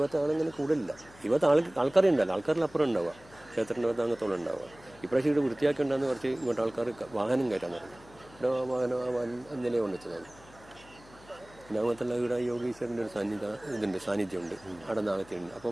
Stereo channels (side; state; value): left; noise; hum, 23 dB below the sound